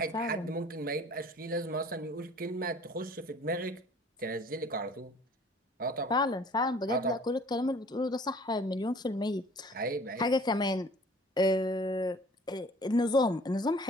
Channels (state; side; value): normal; both; correlation 0.51